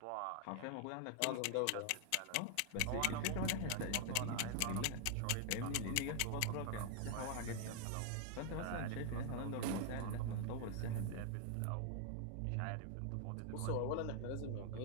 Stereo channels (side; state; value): both; different; correlation 0.00